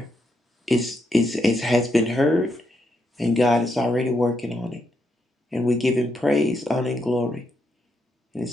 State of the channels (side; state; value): both; normal; correlation 0.80